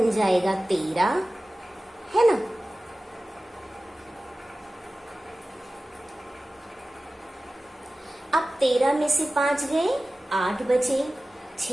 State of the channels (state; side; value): normal; both; correlation 0.96